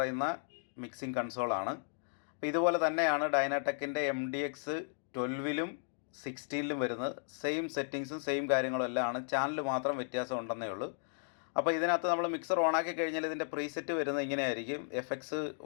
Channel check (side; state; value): right; silent; digital silence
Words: മിക്സിംഗ് കൺസോളാണ്. അപ്പോൾ ഇതുപോലെ തന്നെയാണ് ഡൈനാടെക്കിൻ്റെ MDX12ലും 16ലും വരുന്നത്. സെയിം സെറ്റിങ്സും സെയിം കാര്യങ്ങളും എല്ലാം ആണ്. ചാനൽ മാത്രം വ്യത്യാസം ഉണ്ടെന്നേ ഉള്ളൂ. അപ്പോൾ ഇതിനകത്ത് നമ്മൾ മിക്സർ ഓണാക്കി കഴിഞ്ഞാൽ ഇതിൻ്റെ പ്രീസെറ്റ് വരുന്നത് ഇങ്ങനെയായിരിക്കും.